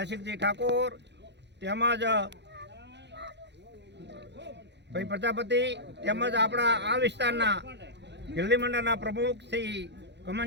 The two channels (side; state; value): left; late; 0.50 ms